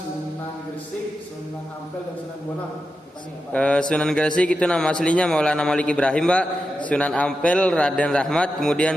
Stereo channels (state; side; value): normal; both; correlation 0.89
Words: Gresik, Sunan Ampel dan Sunan Bonang. Sunan Gresik itu nama aslinya Maulana Malik Ibrahim, Pak. Sunan Ampel Raden Rahmat, kemudian